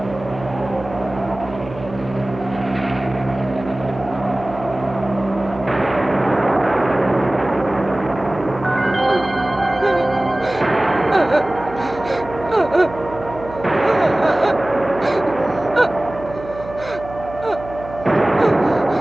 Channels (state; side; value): noise; right; hum, 14 dB below the sound